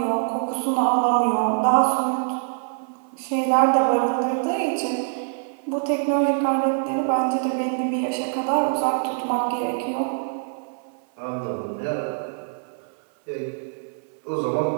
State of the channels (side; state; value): left; silent; 59 dB below the other